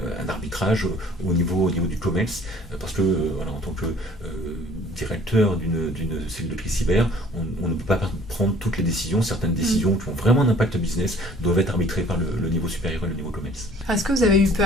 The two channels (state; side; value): normal; both; correlation 0.54